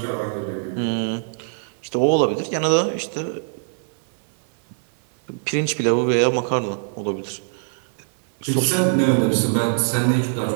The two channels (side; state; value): left; silent; 56 dB below the other